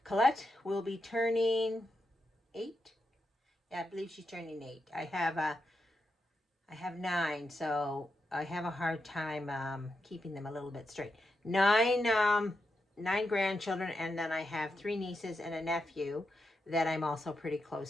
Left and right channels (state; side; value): normal; both; correlation 0.86